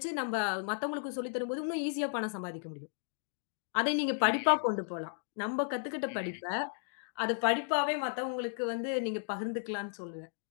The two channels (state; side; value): silent; right; digital silence